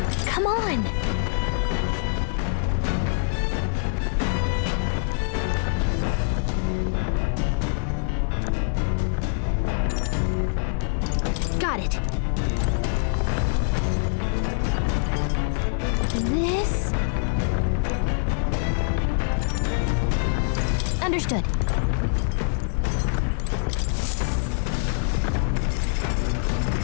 Come on. Got it. This? Understood.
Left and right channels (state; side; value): silent; right; digital silence